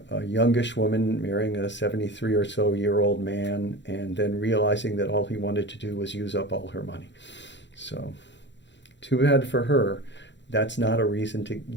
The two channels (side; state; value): right; late; 0.52 ms